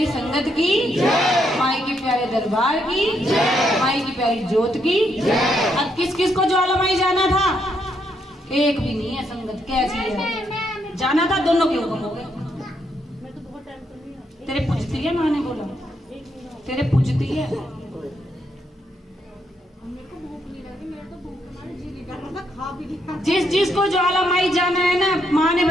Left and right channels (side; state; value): both; normal; correlation 0.76